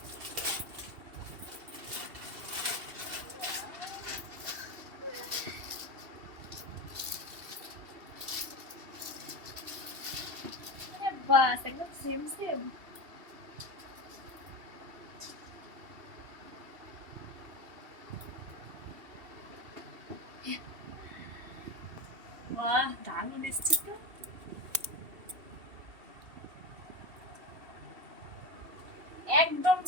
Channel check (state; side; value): late; left; 2.7 ms